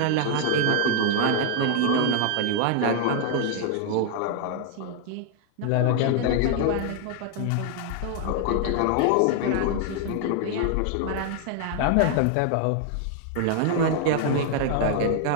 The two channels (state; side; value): different; both; correlation 0.00